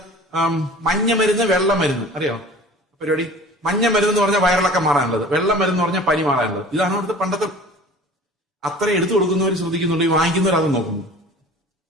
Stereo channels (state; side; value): normal; both; correlation 0.43